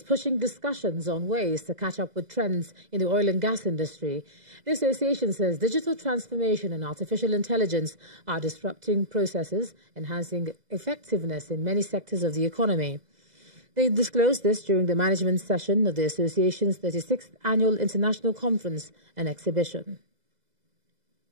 pushing discussions on ways to catch up with trends in the oil and gas industry. The association says digital transformation and artificial intelligence are disrupting processes, enhancing effectiveness in many sectors of the economy. They disclosed this during the management session of the association's 36th Annual International Conference and Exhibition.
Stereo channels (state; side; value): late; left; 2.0 ms